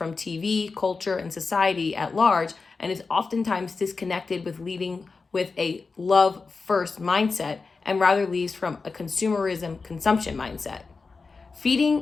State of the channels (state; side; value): quieter; right; 4.4 dB